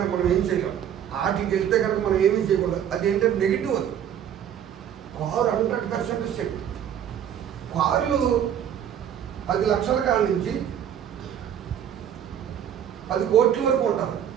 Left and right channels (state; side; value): quieter; left; 9.4 dB